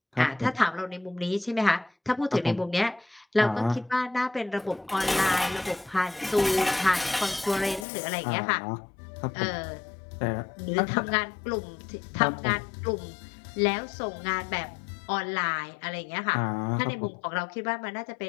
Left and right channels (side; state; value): right; drops out; at 7.9 s